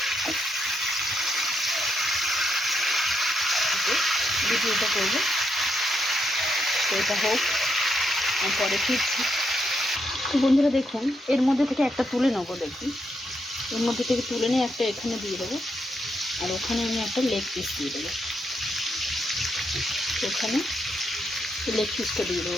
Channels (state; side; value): normal; both; correlation 0.80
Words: ভিডিওটা করবো তো এটা হোক, পরে ফিরছি। বন্ধুরা দেখুন এর মধ্যে থেকে একটা তুলে নেবো। দেখুন এর মধ্যে থেকে তুলে নিয়ে একটা এখানে দিয়ে দেবো। আর ওখানে আমি একটা লেগ পিস দিয়ে দেবো। ওখানে লেগ পিসটা দিয়ে